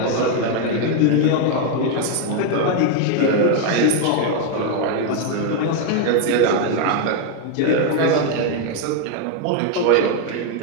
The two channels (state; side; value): different; both; correlation 0.01